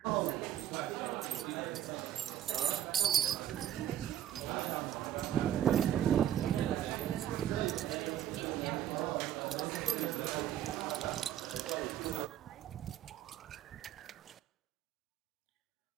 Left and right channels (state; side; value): quieter; left; 11.2 dB